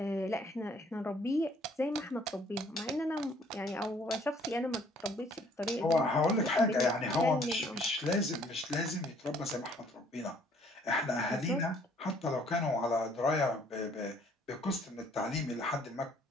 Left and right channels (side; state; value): both; normal; correlation 0.60